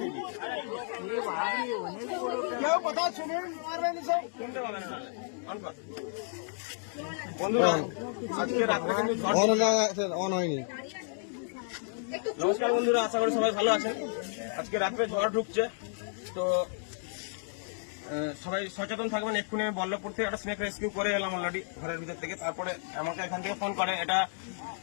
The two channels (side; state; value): right; silent; digital silence